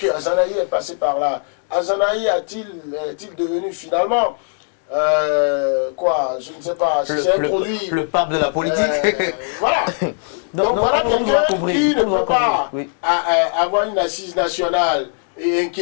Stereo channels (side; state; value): right; silent; 60 dB below the other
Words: Azanahi est passé par là? Azanahi est-il devenu finalement quoi, je ne sais pas, si c'est un produit... Le pape de la politique. Voilà. Donc voilà quelqu'un qui ne peut pas avoir une assise nationale et